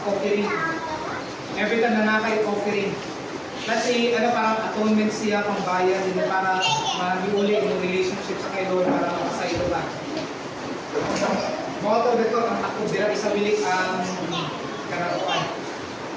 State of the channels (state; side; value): identical; both; correlation 1.00